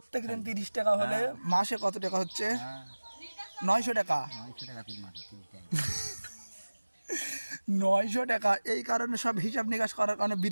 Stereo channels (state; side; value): inverted; both; correlation -1.00